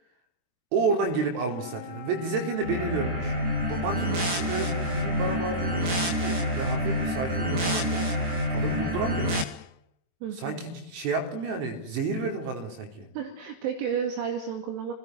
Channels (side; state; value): left; late; 24 ms